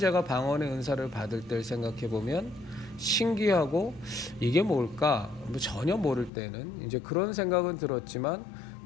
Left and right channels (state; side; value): drops out; right; at 6.3 s